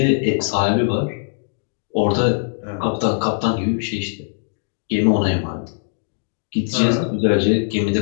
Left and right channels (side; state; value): right; silent; digital silence